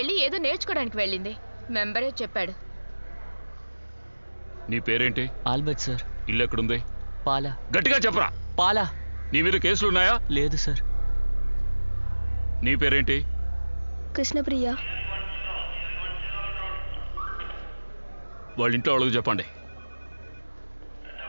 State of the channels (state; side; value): inverted; both; correlation -1.00